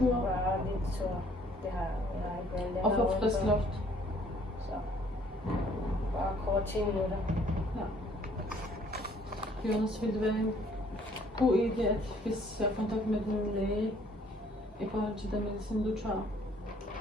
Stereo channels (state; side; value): normal; both; correlation 0.60